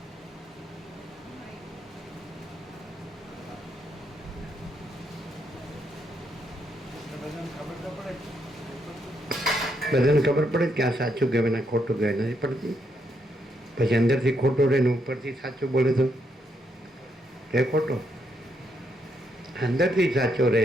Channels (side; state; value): both; normal; correlation 0.77